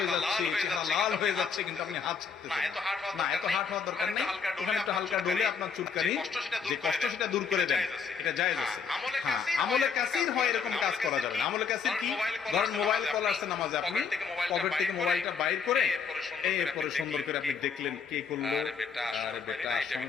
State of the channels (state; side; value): quieter; right; 5.9 dB